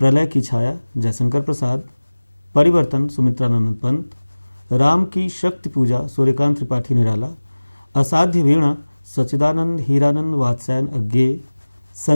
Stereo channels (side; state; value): both; inverted; correlation -1.00